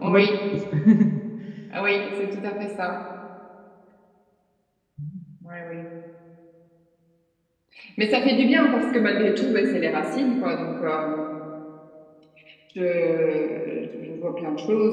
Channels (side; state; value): both; identical; correlation 1.00